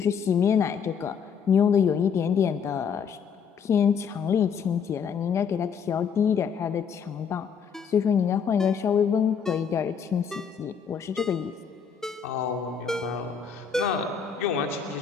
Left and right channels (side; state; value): right; quieter; 6.9 dB